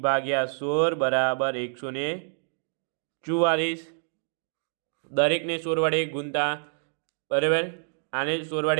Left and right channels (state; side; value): silent; left; digital silence